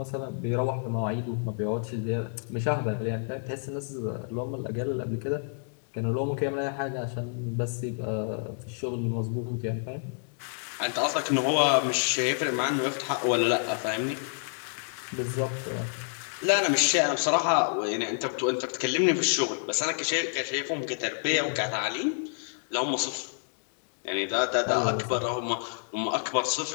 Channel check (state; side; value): silent; right; digital silence